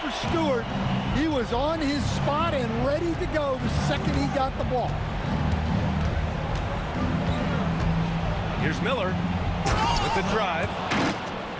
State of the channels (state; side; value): identical; both; correlation 1.00